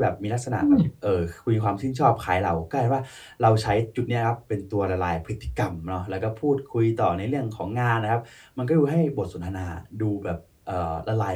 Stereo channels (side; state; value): both; identical; correlation 1.00